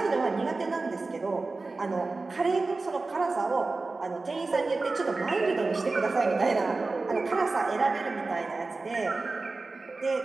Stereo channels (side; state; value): left; quieter; 3.6 dB